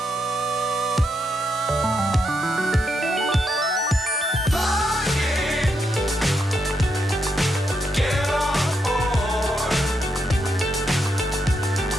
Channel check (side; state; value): both; normal; correlation 0.81